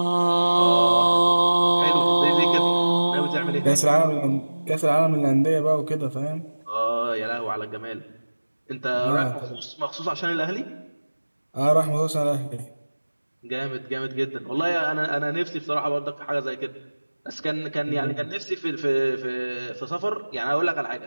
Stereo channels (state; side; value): inverted; both; correlation -1.00